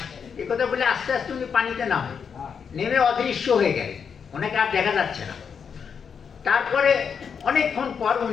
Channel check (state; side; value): quieter; right; 6.6 dB